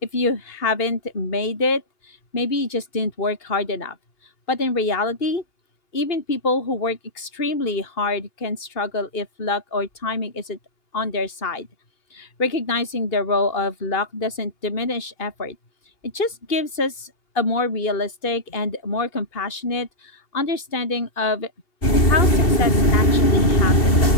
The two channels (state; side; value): late; right; 2.6 ms